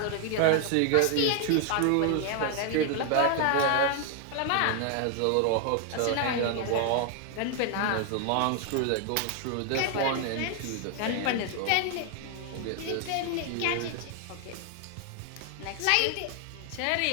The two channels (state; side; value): different; both; correlation 0.00